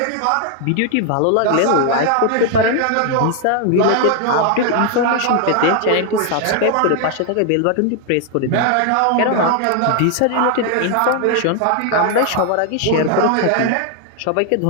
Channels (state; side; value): different; both; correlation 0.00